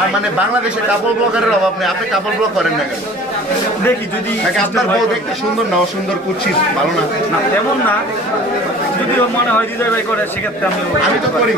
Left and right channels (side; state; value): both; normal; correlation 0.46